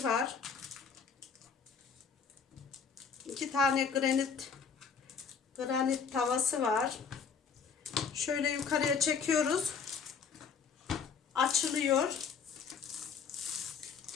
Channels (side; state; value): right; quieter; 6.1 dB